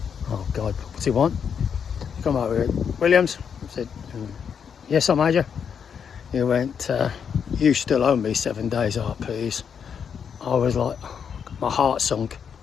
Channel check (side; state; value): right; quieter; 7.2 dB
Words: Oh God, what's he want? Come over here, Williams. I said, yes, sir, Major. He went, you still owe me 7 days RPs. I was like, my heart sunk.